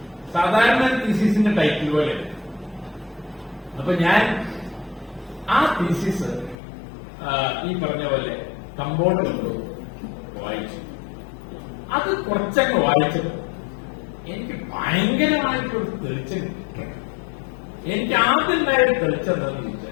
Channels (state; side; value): drops out; right; at 6.6 s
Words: സാധാരണ തീസിസിന്റെ ടൈറ്റിൽ പോലെ. അപ്പൊ ഞാൻ ആ തീസിസ് ഈ പറഞ്ഞ പോലെ കമ്പോർഡ് കൊണ്ട് വായിച്ചു. അത് കുറച്ചങ്ങ് വായിച്ചത് എനിക്ക് ഭയങ്കരമായിട്ടൊരു തെളിച്ചം. എനിക്ക് ആദ്യം ഉണ്ടായൊരു തെളിച്ചെന്താന്ന്